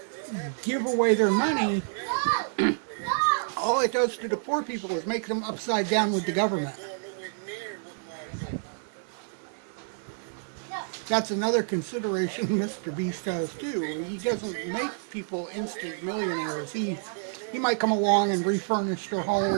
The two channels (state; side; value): silent; left; 59 dB below the other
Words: give away their money, all it does to the poor people is make them upside down with the government. That's another consideration Mr. Beast has too. He doesn't make people instant millionaires. He might come along and refurnish their